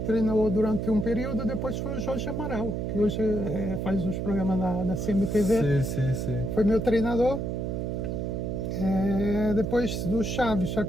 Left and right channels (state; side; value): noise; right; hum, 2 dB below the sound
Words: treinou durante um período, depois foi o Jorge Amaral, que hoje faz os programas da CMTV. Sim. Foi meu treinador. Depois do Chaves,